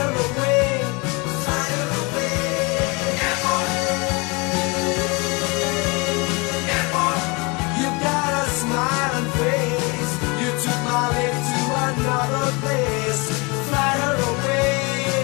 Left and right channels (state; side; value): quieter; right; 28.3 dB